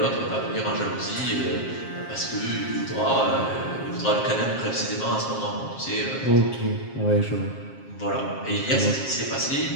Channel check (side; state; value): right; late; 7.5 ms